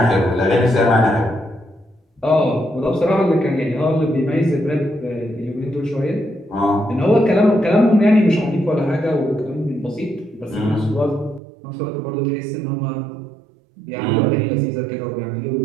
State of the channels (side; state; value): left; drops out; at 11.4 s